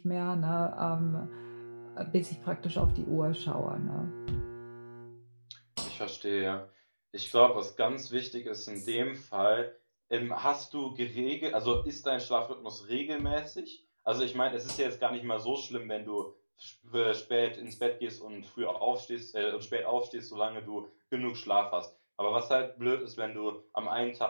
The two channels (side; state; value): both; inverted; correlation -1.00